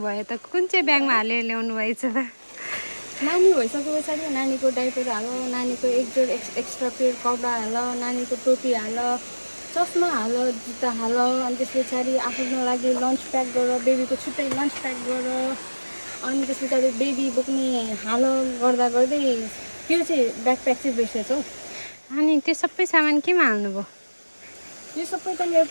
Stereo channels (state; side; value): inverted; both; correlation -1.00